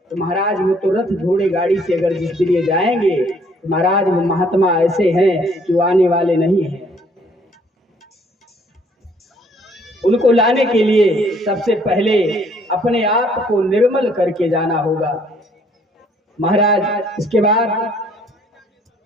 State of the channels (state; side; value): normal; both; correlation 0.62